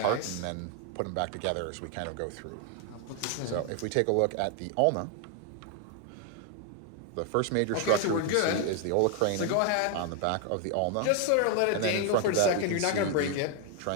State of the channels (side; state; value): both; different; correlation 0.01